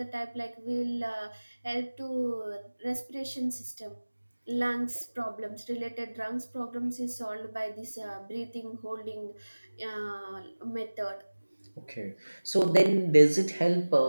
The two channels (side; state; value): both; inverted; correlation -1.00